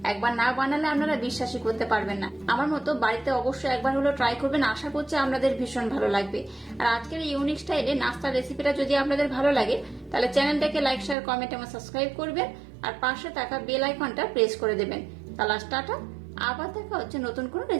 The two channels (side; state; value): left; drops out; at 11.2 s